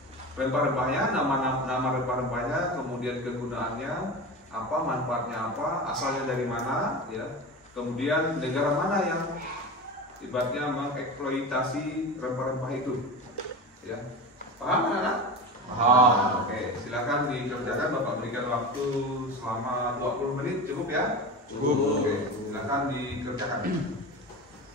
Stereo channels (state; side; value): normal; both; correlation 0.28